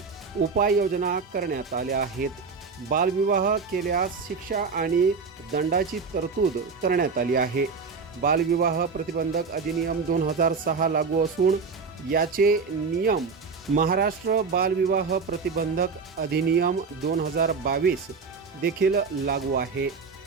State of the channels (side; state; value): left; quieter; 5.0 dB